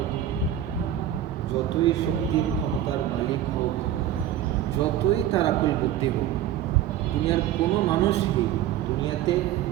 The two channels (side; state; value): left; quieter; 11.5 dB